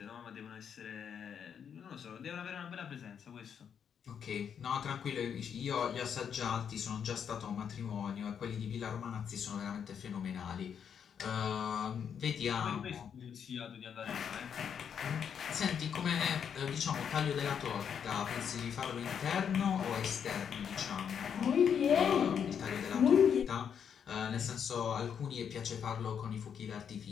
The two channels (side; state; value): right; quieter; 7.7 dB